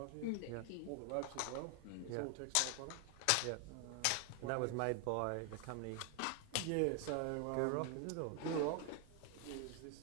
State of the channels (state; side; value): different; both; correlation 0.00